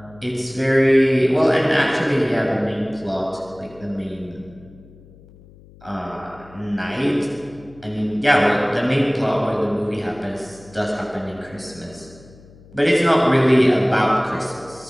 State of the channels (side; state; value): left; noise; hum, 24 dB below the sound